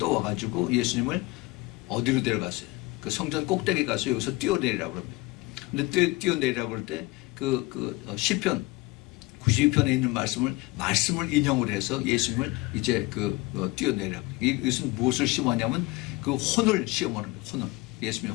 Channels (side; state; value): right; quieter; 22.2 dB